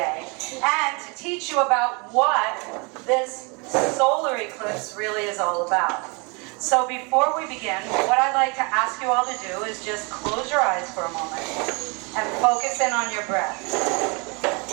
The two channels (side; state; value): left; quieter; 31.1 dB